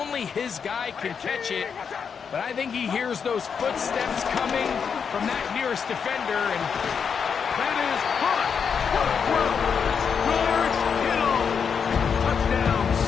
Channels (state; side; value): quieter; right; 6.6 dB